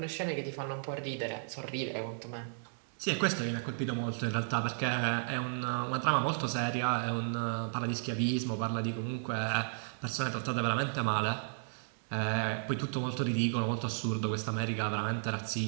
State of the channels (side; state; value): left; silent; digital silence